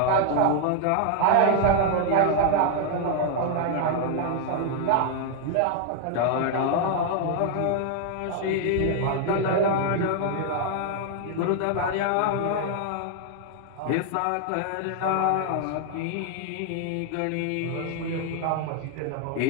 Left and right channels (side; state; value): both; different; correlation 0.00